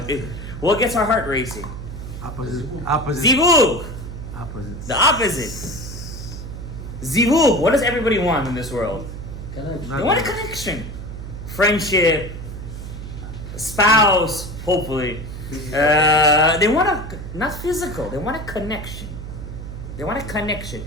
what gets our heart racing? Opposite. Zivug. Opposite. The opposite. Zivug. What does everybody want in this world? Connection. They want a connection, friendship, spouse. Hopefully, they want not physical. They want a connection. They want a connection.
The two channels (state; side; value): noise; right; hum, 9 dB below the sound